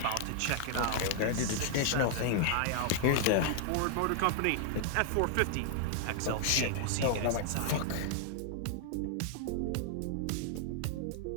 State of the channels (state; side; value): different; both; correlation 0.00